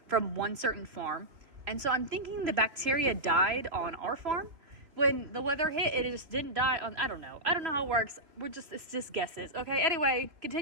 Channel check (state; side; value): late; left; 3.3 ms